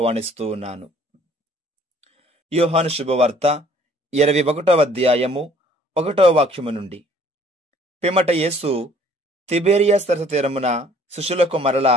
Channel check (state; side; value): normal; both; correlation 0.57